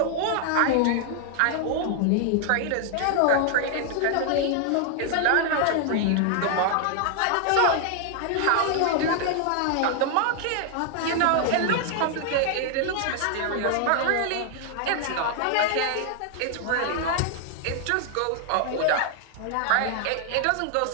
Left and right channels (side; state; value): both; different; correlation 0.00